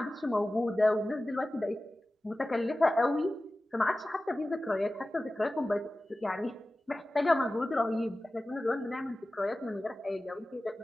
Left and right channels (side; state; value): both; normal; correlation 0.96